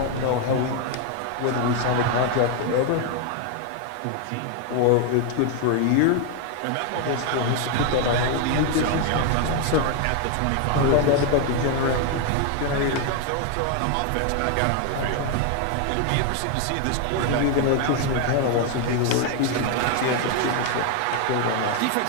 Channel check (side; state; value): both; different; correlation 0.01